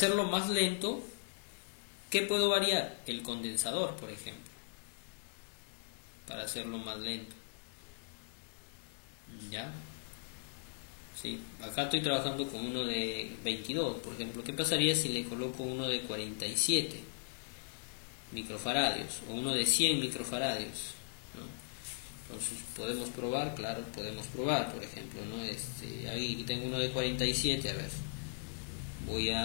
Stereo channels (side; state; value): right; silent; digital silence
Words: más lento, ¿qué puedo variar? El condensador, por ejemplo. Para hacerlo más lento. ¿Ya? Sí, acá estoy trabajando con uno de 22, por ejemplo. ¿Qué pasaría si le coloco uno de 47 microfaradios o uno de 100 microfaradios, ¿no? Entonces podemos probar, claro, podemos probar, por ejemplo, ¿no? Ahí tengo uno de 47, a ver. Voy